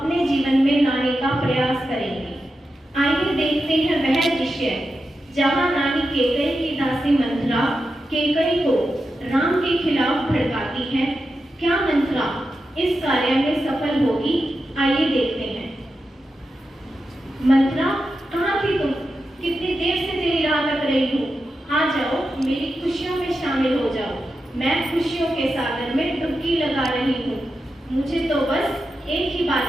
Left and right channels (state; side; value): normal; both; correlation 0.89